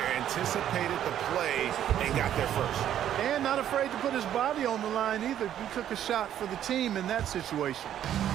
Anticipated the play and got there first. And not afraid to put his body on the line either. He took a shot for the team in that situation.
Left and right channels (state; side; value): quieter; left; 10.8 dB